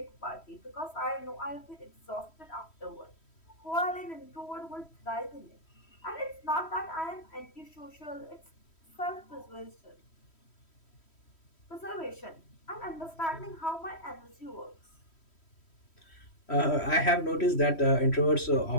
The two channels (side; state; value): right; late; 3.1 ms